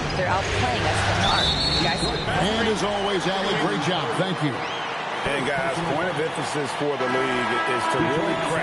They're outplaying us from the arc. Guys, and as always, Allie, great job. Thank you. And guys, point of emphasis for the league is to really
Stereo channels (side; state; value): both; identical; correlation 1.00